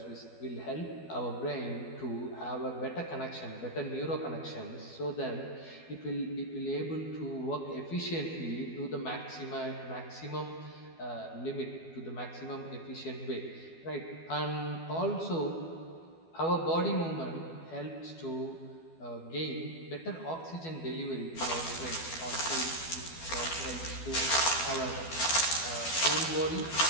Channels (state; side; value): late; right; 12 ms